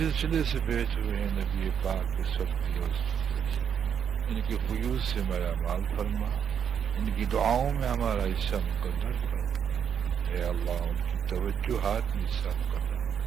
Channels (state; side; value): quieter; left; 8.0 dB